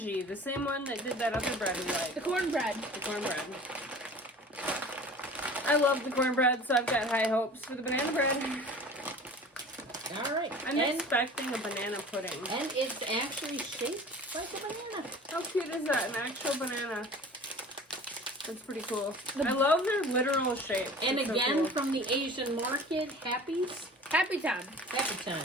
the same one that did that other bread we like. The cornbread. The cornbread. I love the cornbread, so I've got high hopes for the banana bread. All right. I'm expecting a banana pudding. And it's actually shaped like a banana. How cute is that? An actual banana. That's pretty cool. I love their literal shape. And It's so again, cool. from the Asian market, Happy's. Happy time. Happy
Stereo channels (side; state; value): both; normal; correlation 0.42